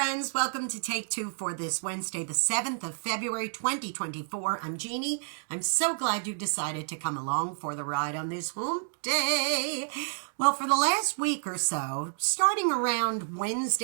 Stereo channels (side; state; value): left; silent; digital silence